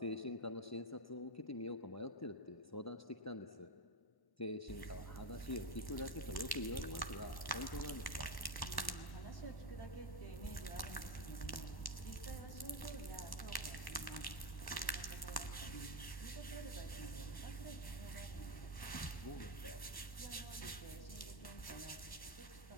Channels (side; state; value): right; late; 1.1 ms